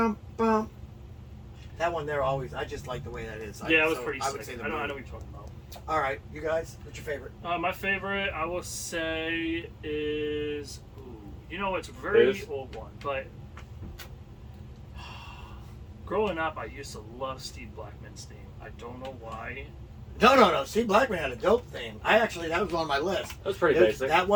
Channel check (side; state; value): both; identical; correlation 1.00